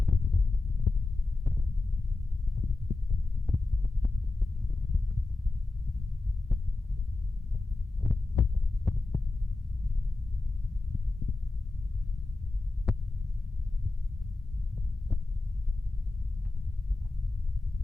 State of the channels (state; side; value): quieter; right; 3.2 dB